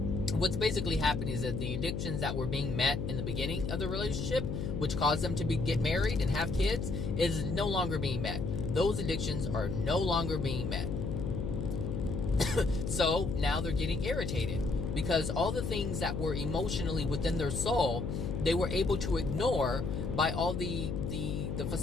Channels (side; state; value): left; noise; hum, 2 dB below the sound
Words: what's basically happening is that the addictions that were being met in the beginning of the relationship, which caused them to get married and have kids, is no longer being met. Those addictions are no longer being met. So now they're getting irritated because all the things that were emotionally within their soul, they were able to ignore by all the